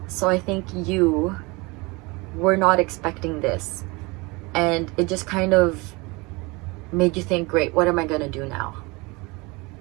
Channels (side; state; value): left; quieter; 25.7 dB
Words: so I think you were not expecting this, and it just kind of made you think, great, what am I gonna do now?